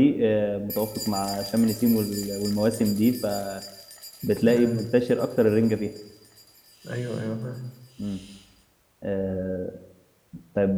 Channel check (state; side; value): identical; both; correlation 1.00